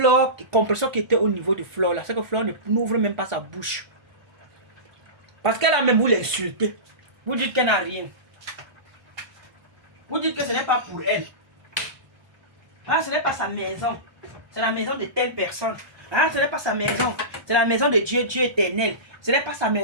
Compresseur qui était au niveau de Flore là, c'est que Flore n'ouvre même pas sa bouche. Parce qu'elle a même voulu l'insulter. Vous dites qu'elle n'a rien. Vous dites que ce n'est pas pour elle. Ah, ce n'est pas sa maison. C'est la maison de telle personne. Ah, ce n'est pas sa maison. C'est la maison de Dieu, Dieu éternel. Ce n'est pas sa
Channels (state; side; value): late; left; 1.4 ms